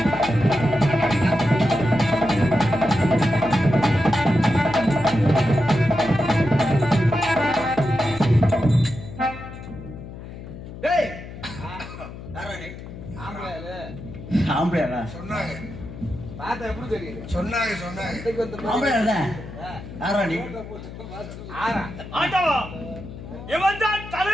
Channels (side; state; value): left; noise; hum, 12 dB below the sound